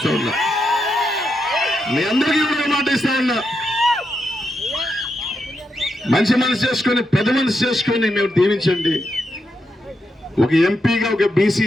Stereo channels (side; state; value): both; normal; correlation 0.84